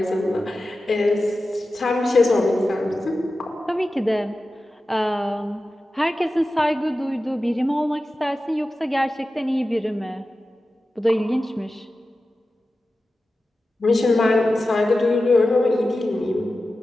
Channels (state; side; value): normal; both; correlation 0.94